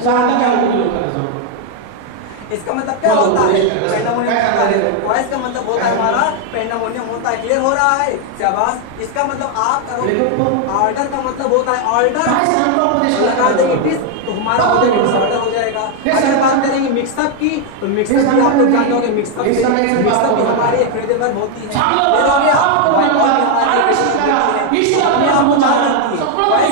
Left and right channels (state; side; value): different; both; correlation 0.01